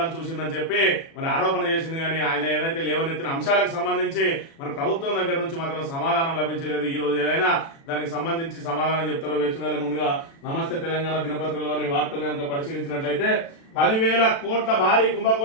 చూసిందని చెప్పి మరి ఆరోపణ చేసింది. కానీ ఆయన ఏదైతే లేవనెత్తిన అంశాలకు సంబంధించి మరి ప్రభుత్వం దగ్గర నుంచి మాత్రం సమాధానం లభించలేదు. ఈ రోజు ఏదైనా దానికి సంబంధించి సమాధానం చెప్తారో వేచుకోవాలి. ముందుగా నమస్తే తెలంగాణ దినపత్రికలోని వార్తలు కనుక పరిశీలించినట్లయితే 10,000 కోట్ల భారీ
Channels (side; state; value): right; late; 36 ms